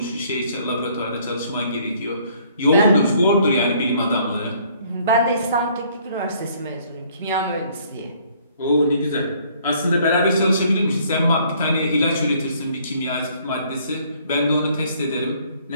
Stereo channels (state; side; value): inverted; both; correlation -0.62